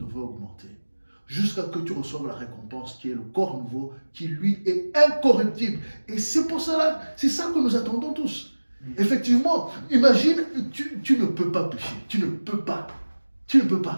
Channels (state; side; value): inverted; both; correlation -1.00